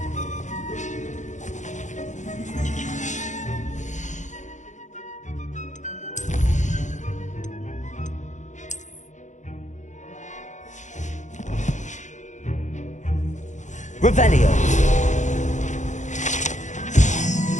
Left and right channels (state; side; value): late; right; 0.35 ms